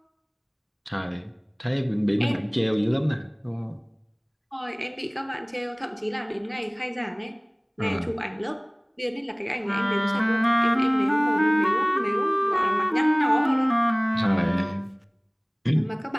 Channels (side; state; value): both; identical; correlation 1.00